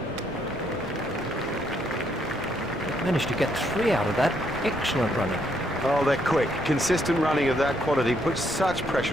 Managed to get 3 out of that. Excellent running. Oh, they're quick. Consistent running of that quality puts such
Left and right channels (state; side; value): normal; both; correlation 0.73